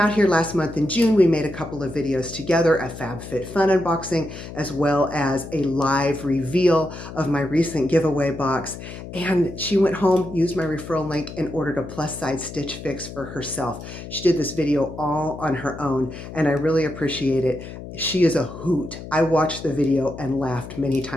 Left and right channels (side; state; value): left; noise; hum, 12 dB below the sound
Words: here last month in June. We made a couple of videos together, a FabFitFun unboxing, as well as a live reveal of my recent giveaway box. And she went home, used my referral link, and ordered a plus size Stitch Fix for herself. She did this video all on her own, and I really appreciate it. She is a hoot. I watched the video and laughed many